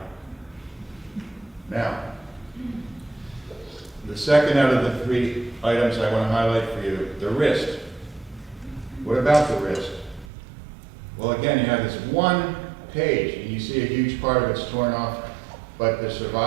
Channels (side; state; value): left; drops out; at 10.2 s